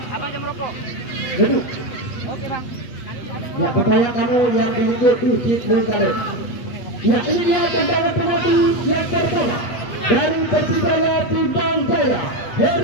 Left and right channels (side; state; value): right; late; 8.3 ms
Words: abang jam rokok. Duduk. Oke bang. Ya supaya kamu yang dilihat dicintai. Ya ini dia tendangan penalti yang pertama dari Persibaya Timbang Jaya,